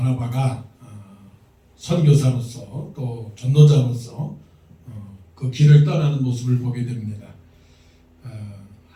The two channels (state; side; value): identical; both; correlation 1.00